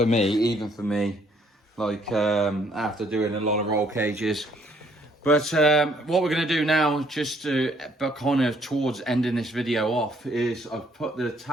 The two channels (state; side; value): normal; both; correlation 0.66